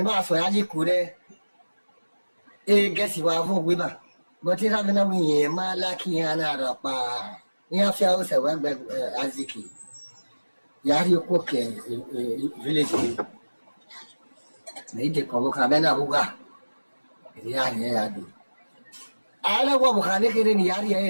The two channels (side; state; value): both; inverted; correlation -1.00